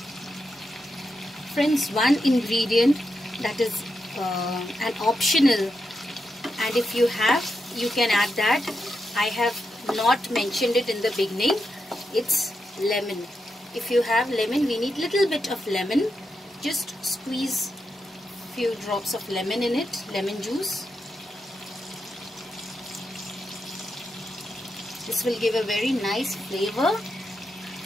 Friends, one ingredient that is an optional, and if you have, you can add that. I have not mentioned it in the beginning. It's lemon. If you have lemon, we need little bit of lemon. Just squeeze few drops of lemon in it, lemon juice. This will give a very nice flavor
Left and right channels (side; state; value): both; normal; correlation 0.85